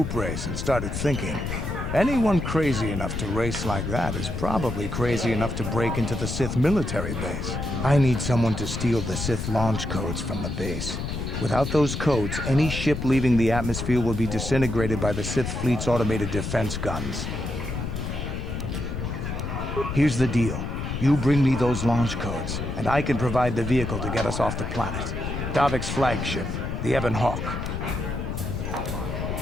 race and started thinking, anyone crazy enough to race like that is probably crazy enough to break into the Sith military base. I need someone to steal the Sith launch codes from the base. Without those codes, any ship leaving the atmosphere will be disintegrated by the Sith fleet's automated defense guns. Here's the deal. You bring me those launch codes, and I can provide the vehicle to get us off the planet. Davik's flagship, the Ebon Hawk.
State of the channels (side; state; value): left; noise; rumble, 4 dB below the sound